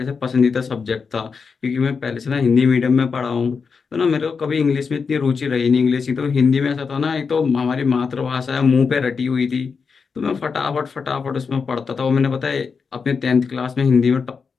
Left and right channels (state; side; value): quieter; right; 5.4 dB